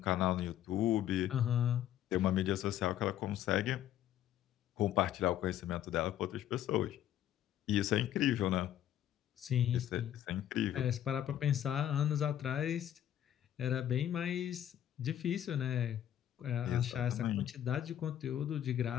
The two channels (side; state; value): right; quieter; 11.3 dB